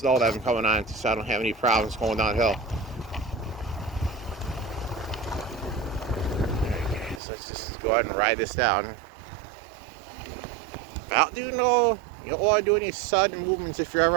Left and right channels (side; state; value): left; drops out; at 7.2 s